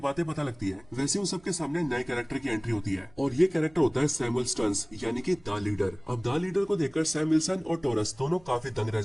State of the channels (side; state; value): right; noise; hum, 26 dB below the sound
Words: पता लगती है वैसे उन सबके सामने नए कैरेक्टर की एंट्री होती है और ये कैरेक्टर होता है सैमुअल स्टर्न्स यानी कि द लीडर। अब द लीडर को देखकर सैम विल्सन और टॉरस दोनों काफी दंग रह